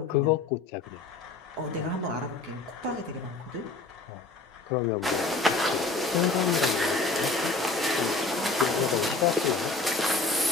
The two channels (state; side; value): quieter; right; 3.6 dB